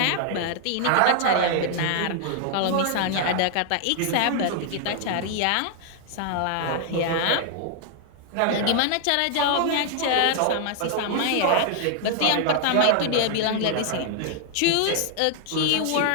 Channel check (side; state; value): both; different; correlation 0.00